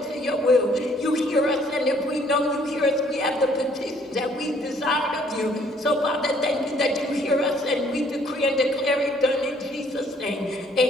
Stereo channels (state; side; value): normal; both; correlation 0.62